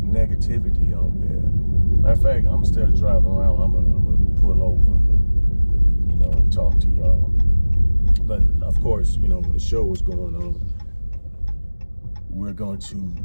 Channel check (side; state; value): both; inverted; correlation -1.00